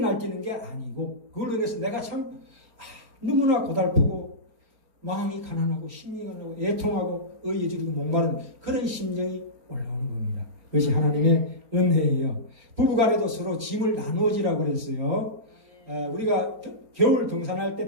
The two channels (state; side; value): late; left; 4.3 ms